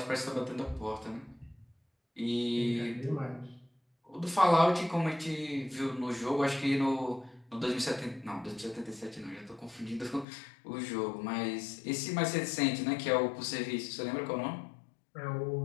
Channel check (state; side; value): drops out; right; at 10.2 s